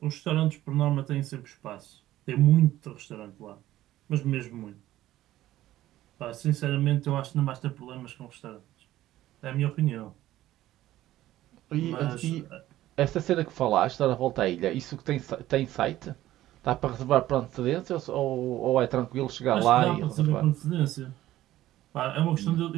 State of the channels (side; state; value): left; quieter; 14.5 dB